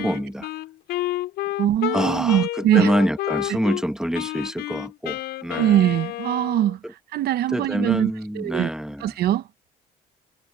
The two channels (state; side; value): quieter; left; 4.0 dB